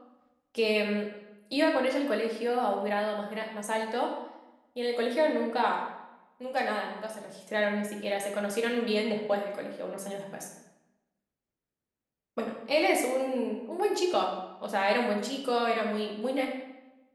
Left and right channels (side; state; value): both; identical; correlation 1.00